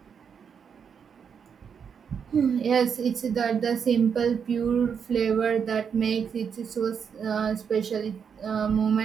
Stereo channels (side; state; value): left; quieter; 7.0 dB